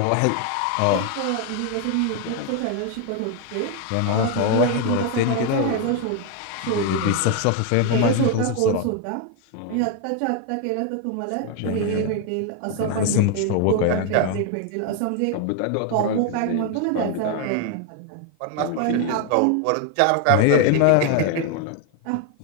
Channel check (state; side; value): different; both; correlation 0.01